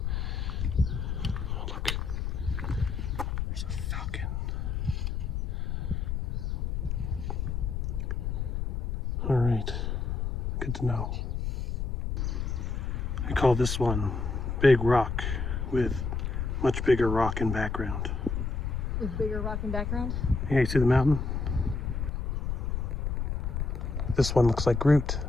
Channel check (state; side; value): noise; left; rumble, 2 dB below the sound